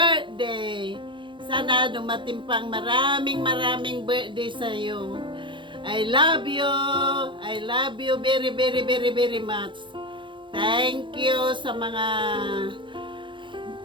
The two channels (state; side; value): late; left; 0.23 ms